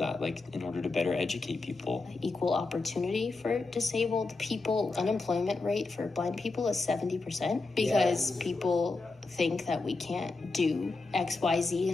like in order to better educate people? Equal opportunity for disabled people. Unemployment rate for blind people is 70% because people think that we can't do XYZ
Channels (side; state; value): right; quieter; 3.6 dB